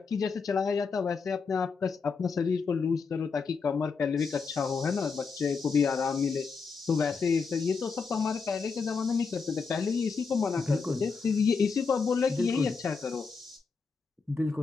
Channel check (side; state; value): right; quieter; 5.1 dB